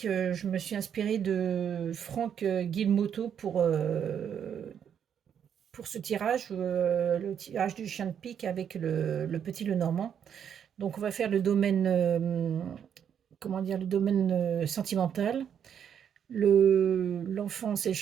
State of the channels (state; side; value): quieter; left; 8.4 dB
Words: Je me suis inspirée de Franck Guilmoto pour ce tirage, le tirage du chien de pique avec le petit Lenormand. Donc on va faire le domaine, comment dire, le domaine sentimental. L'enfance et le